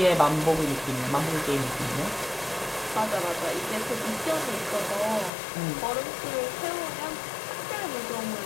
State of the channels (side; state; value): right; drops out; at 5.3 s